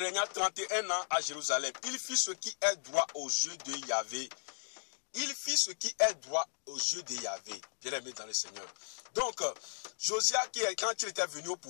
31 ans à Jérusalem. Il fit ce qui est droit aux yeux de Yahvé. Il fit ce qui est droit aux yeux de Yahvé, bien aimé dans le Seigneur. Donc, Josias, quand il était venu au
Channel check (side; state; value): right; silent; digital silence